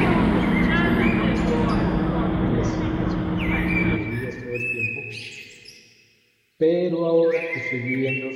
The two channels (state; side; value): identical; both; correlation 1.00